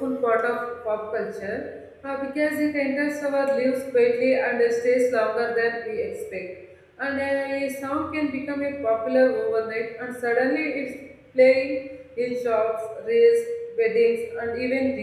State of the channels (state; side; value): identical; both; correlation 1.00